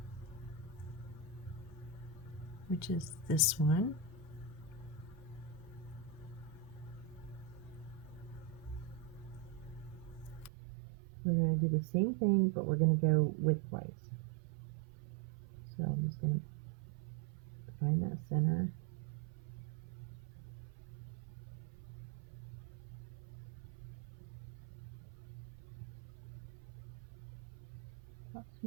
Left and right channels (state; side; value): drops out; left; at 10.5 s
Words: which is this one, we're going to do the same thing, but we're going to go widthwise. So I'm just going to find that center. Pop